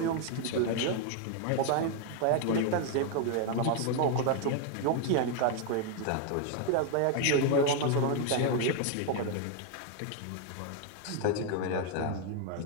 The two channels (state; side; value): different; both; correlation 0.00